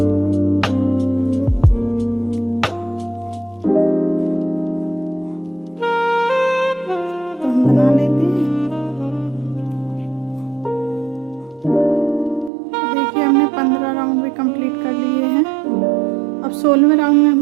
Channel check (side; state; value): left; drops out; at 12.5 s